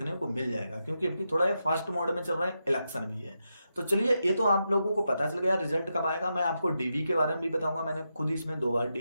को मिल जाएगा। क्योंकि अभी थोड़ा ये फास्ट मोड में चल रहा है, इलेक्शन भी है। तो चलिए, ये तो आप लोगों को पता चल गया रिजल्ट कब आएगा। मैं आपको डीवी के बारे में भी बताऊंगा, मैंने खुद इसमें 2 बार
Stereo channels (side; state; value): both; inverted; correlation -0.86